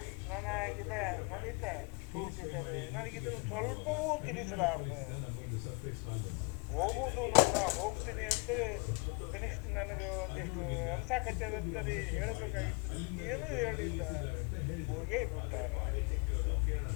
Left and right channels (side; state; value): right; quieter; 32.2 dB